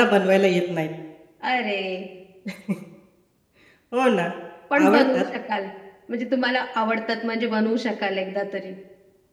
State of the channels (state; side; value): identical; both; correlation 1.00